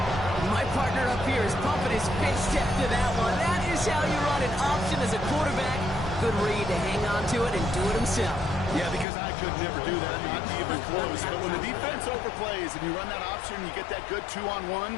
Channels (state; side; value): drops out; right; at 9.1 s